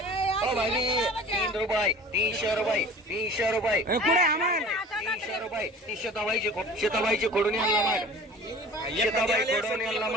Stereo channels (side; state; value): both; normal; correlation 0.43